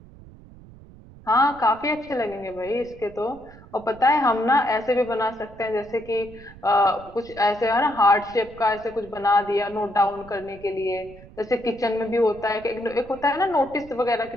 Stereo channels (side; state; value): right; noise; rumble, 20 dB below the sound